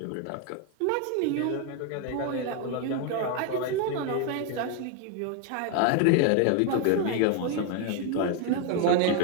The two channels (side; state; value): both; different; correlation 0.01